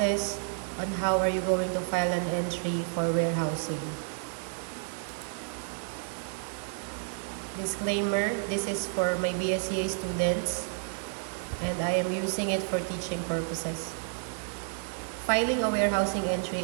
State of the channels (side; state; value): left; silent; digital silence